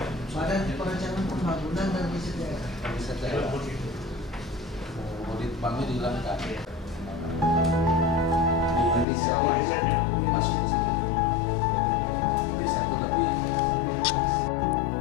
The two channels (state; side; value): drops out; right; at 9.1 s